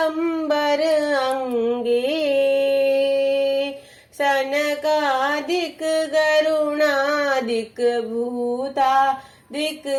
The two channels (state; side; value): identical; both; correlation 1.00